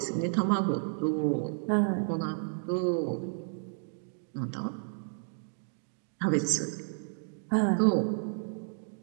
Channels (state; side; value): silent; left; digital silence